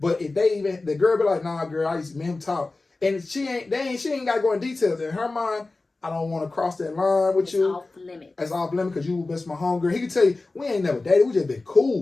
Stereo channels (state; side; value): quieter; right; 3.4 dB